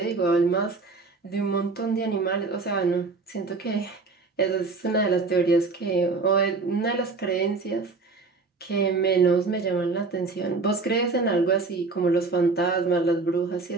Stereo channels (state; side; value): quieter; left; 4.0 dB